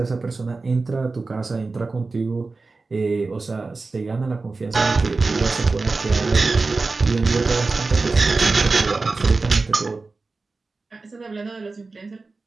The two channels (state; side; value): quieter; left; 3.8 dB